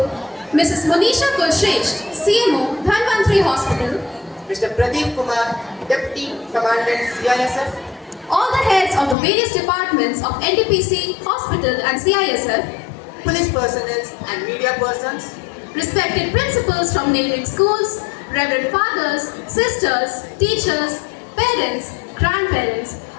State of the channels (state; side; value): drops out; right; at 9.2 s